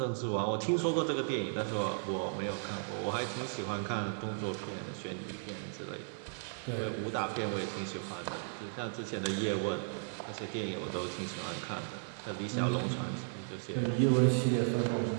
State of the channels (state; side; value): silent; left; 54 dB below the other